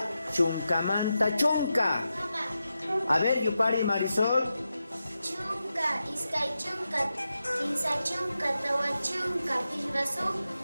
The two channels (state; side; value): inverted; both; correlation -0.90